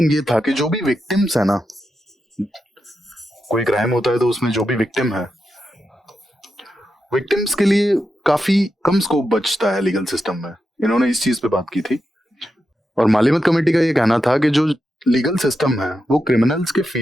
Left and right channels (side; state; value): both; normal; correlation 0.87